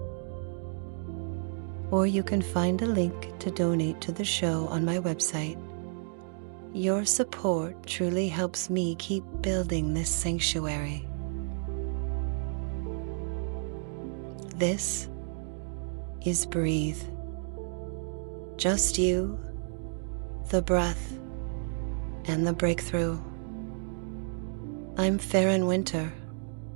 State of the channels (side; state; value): left; silent; digital silence